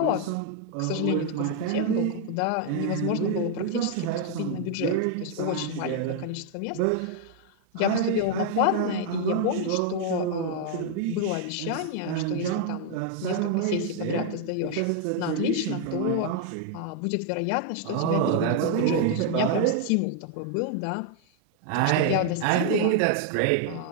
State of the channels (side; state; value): both; different; correlation 0.00